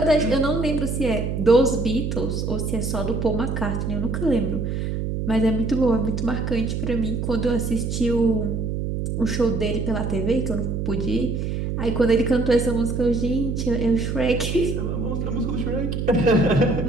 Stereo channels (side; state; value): right; noise; hum, 2 dB below the sound